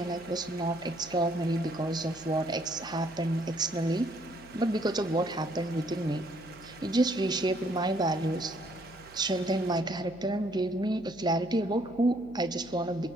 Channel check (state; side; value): noise; right; hum, 23 dB below the sound